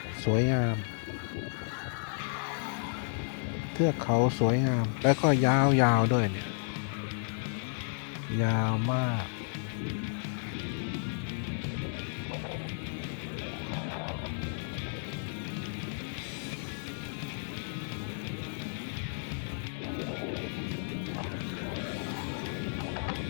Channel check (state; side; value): silent; right; digital silence